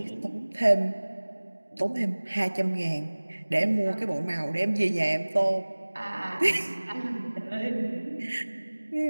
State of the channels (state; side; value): inverted; both; correlation -1.00